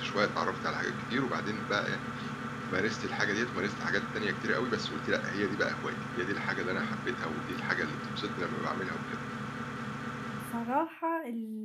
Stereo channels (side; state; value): both; identical; correlation 1.00